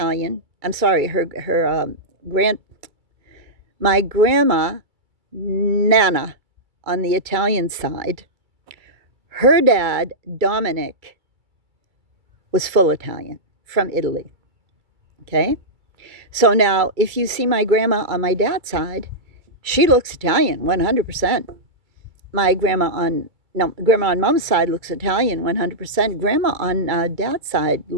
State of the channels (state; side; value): late; left; 2.3 ms